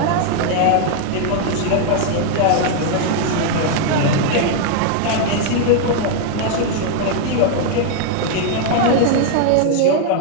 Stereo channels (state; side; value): different; both; correlation 0.00